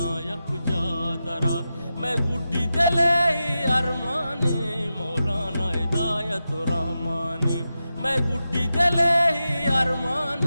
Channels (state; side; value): inverted; both; correlation -0.91